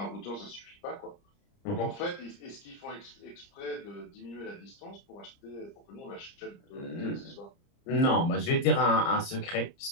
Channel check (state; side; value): late; right; 30 ms